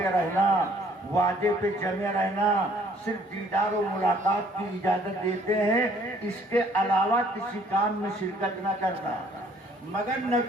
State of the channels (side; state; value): both; normal; correlation 0.60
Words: رہنا، وعدے پہ جمے رہنا، صرف دیدار و ملاقات کی اجازت دیتے ہیں، اس کے علاوہ کسی کام میں شرکت نہ کرنا۔ مگر